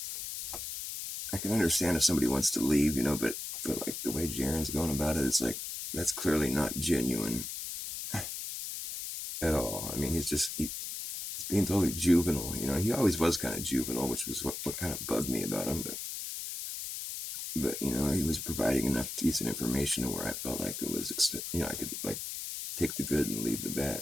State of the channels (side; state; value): left; noise; hiss, 6 dB below the sound